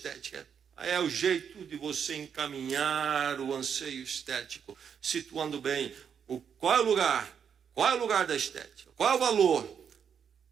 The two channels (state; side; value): quieter; left; 7.5 dB